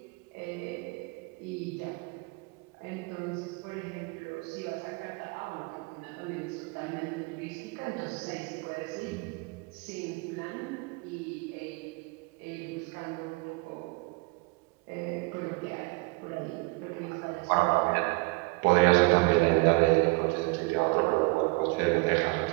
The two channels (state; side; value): quieter; left; 27.7 dB